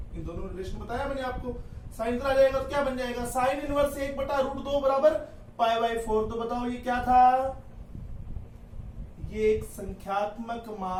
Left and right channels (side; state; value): both; identical; correlation 1.00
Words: इन दोनों रिलेशन बताया मैंने आपको। साइन आ जाएगा तो क्या बन जाएगा, साइन इनवर्स 1/√2 बराबर π/4। तो बताओ ये क्या था, ये एक संख्यात्मक